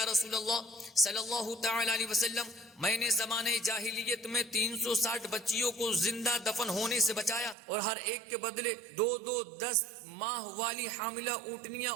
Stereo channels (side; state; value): left; drops out; at 7.6 s